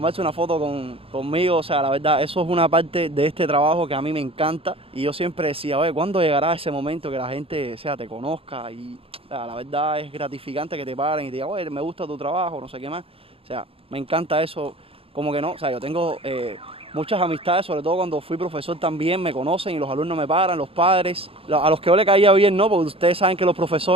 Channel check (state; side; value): late; left; 0.27 ms